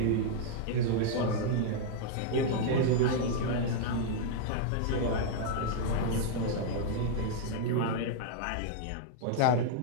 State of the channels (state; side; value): different; both; correlation -0.01